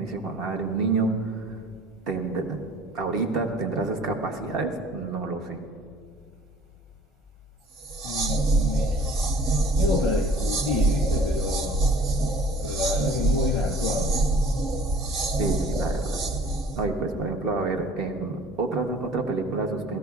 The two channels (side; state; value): both; normal; correlation 0.50